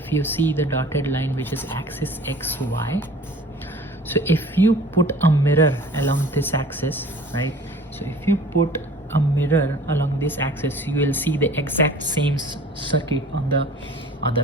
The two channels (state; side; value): normal; both; correlation 0.46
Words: you see the dotted line, which is axis XY, so if you put a mirror along this axis, right? So if you put a mirror along this axis, you will see the exact same circuit on the other